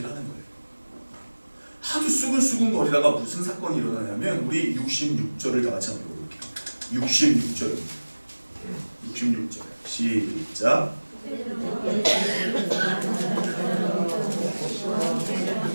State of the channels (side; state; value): both; inverted; correlation -1.00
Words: 하는 거예요. 하도 수군거리다가 무슨 사건이 일어나냐면 우리 66절을 다 같이 한번 읽어볼게요. 66절 시작.